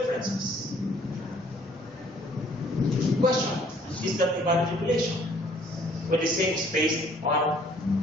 Question, is that a valid regulation? When the same is based on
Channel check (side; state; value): both; normal; correlation 0.59